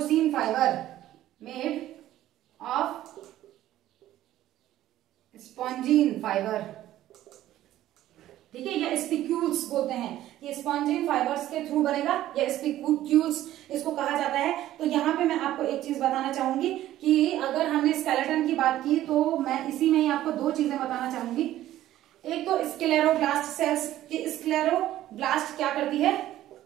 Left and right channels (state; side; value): quieter; left; 13.7 dB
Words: fibre, made of spongin fibre, ठीक है, या स्पिक्यूल्स बोलते हैं, ये स्पॉन्जिन फाइबर्स के थ्रू बनेगा या स्पिक्यूल्स इसको कहा जाता है। तो यहाँ पे मैं आपको एक चीज बताना चाहूंगी कि अगर हमने स्केलेटन की बात की तो मैं इसी में ही आपको दो चीजें बताना चाहूंगी। एक तो स्क्लेरोब्लास्ट सेल्स, कि स्क्लेरोब्लास्ट क्या करती है,